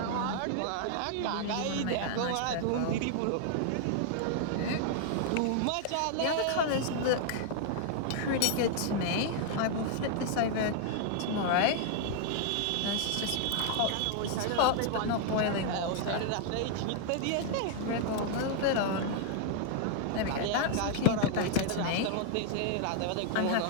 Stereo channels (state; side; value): different; both; correlation 0.00